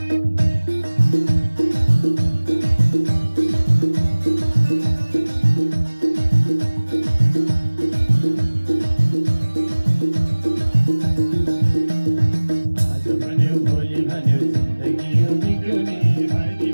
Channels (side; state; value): both; inverted; correlation -1.00